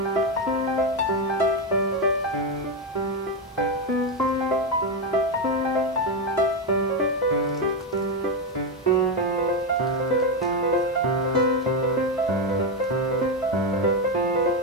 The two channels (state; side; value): normal; both; correlation 0.08